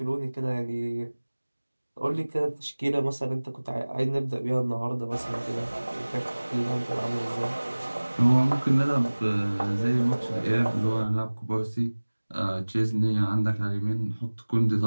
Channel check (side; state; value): both; inverted; correlation -1.00